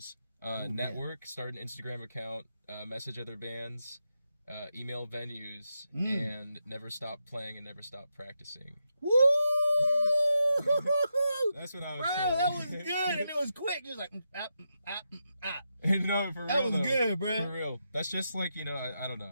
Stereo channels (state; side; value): inverted; both; correlation -0.85